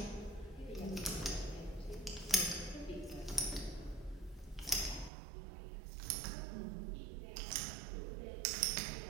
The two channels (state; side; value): drops out; left; at 5.1 s